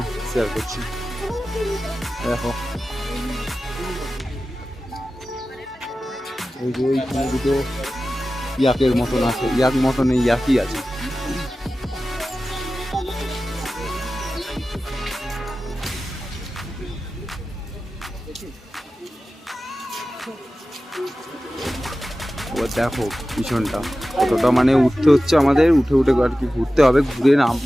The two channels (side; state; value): both; normal; correlation 0.95